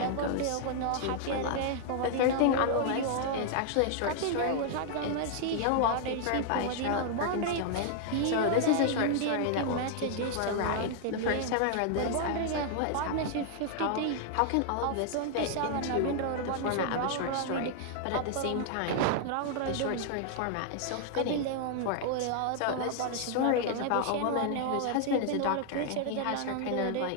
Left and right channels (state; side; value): different; both; correlation 0.00